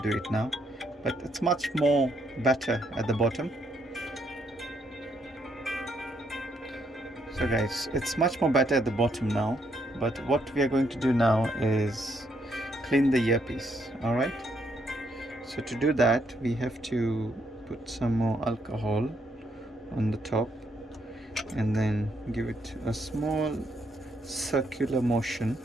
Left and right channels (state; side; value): normal; both; correlation 0.74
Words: do it now. But it's much more better at the bottom. So guys, it's much more better at the bottom now, but what we are going to do now is clean the earpiece. Alright, so to do that we have to put some more alcohol on the top and then give it a small circular motion.